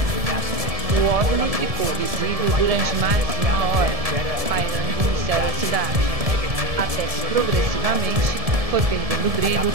O OVNI ficou visível durante mais de 1 hora, pairando no céu da cidade, até que progressivamente foi perdendo brilho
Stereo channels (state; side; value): late; left; 1.7 ms